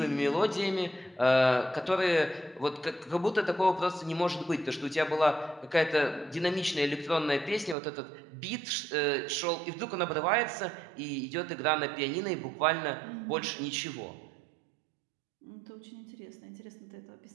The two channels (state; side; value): drops out; left; at 7.8 s